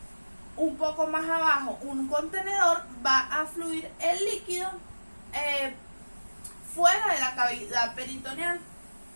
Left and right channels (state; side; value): inverted; both; correlation -1.00